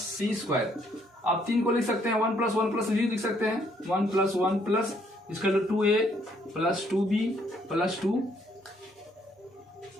square. आप 3 को लिख सकते हैं 1 प्लस 1 प्लस बी लिख सकते हैं 1 plus 1 plus equal to 2a plus 2b plus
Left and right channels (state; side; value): normal; both; correlation 0.68